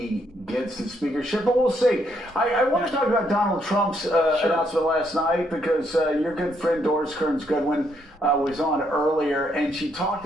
gets the speakership, but we'll see. I want to talk about Donald Trump's announcement last night, because your good friend Doris Kearns Goodwin was on earlier, and she talked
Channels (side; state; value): both; normal; correlation 0.73